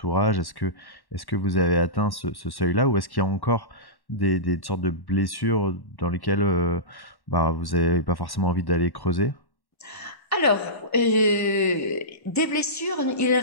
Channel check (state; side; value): late; right; 1.1 ms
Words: Est-ce que vous avez atteint ce seuil-là, ou est-ce qu'il y a encore des sortes de blessures dans lesquelles bah, vous n'avez pas forcément envie d'aller creuser? Alors, des blessures, il ne